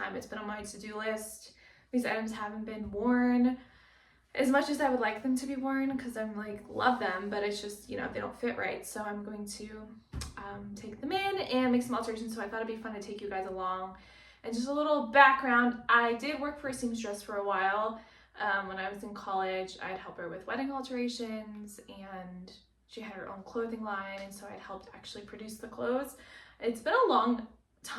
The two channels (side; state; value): both; identical; correlation 1.00